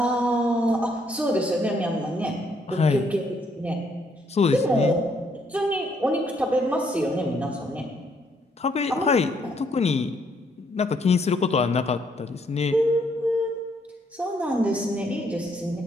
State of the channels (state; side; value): normal; both; correlation 0.70